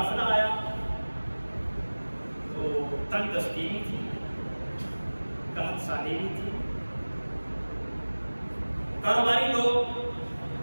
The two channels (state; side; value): inverted; both; correlation -1.00